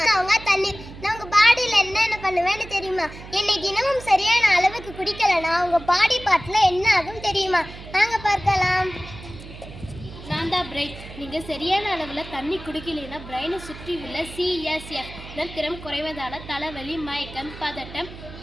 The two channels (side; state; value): right; noise; hum, 15 dB below the sound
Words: அவங்க தண்ணீர். நான் உங்க பாடியில என்னென்ன பண்ணுவேன்னு தெரியுமா? என்னை தினமும் சரியான அளவுக்கு குடிக்கலனா உங்க பாடி பார்ட்ல என்ன ஆகும் தெரியுமா? வாங்க பார்க்கலாம். நான் தான் பிரெயின். நீங்கள் சரியான அளவில் தண்ணி குடிக்கலைன்னா பிரெயினை சுற்றி உள்ள சிஎஸ்எஃப் திறம் குறைவதால் தலைவலி, மயக்கம், பதட்டம்,